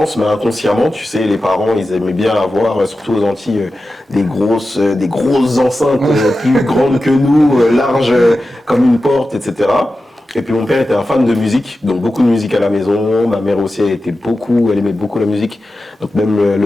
mais inconsciemment, tu sais, les parents, ils aimaient bien avoir, surtout aux Antilles, des grosses enceintes plus grandes que nous, larges comme une porte, etc. Et puis mon père était un fan de musique, donc beaucoup de musique à la maison. Ma mère aussi, elle aimait beaucoup la musique. Donc même le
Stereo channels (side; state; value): both; normal; correlation 0.93